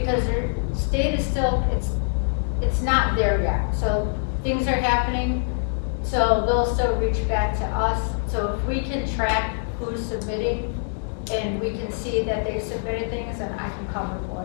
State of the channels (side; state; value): right; silent; 62 dB below the other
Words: their state is still, it's not there yet. So things are happening, so they'll still reach back to us. So if we can track who's submitting and we can see that they submitted things, then I can cover for